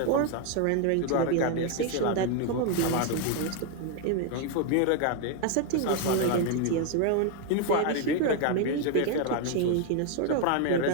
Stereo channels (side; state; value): both; different; correlation 0.01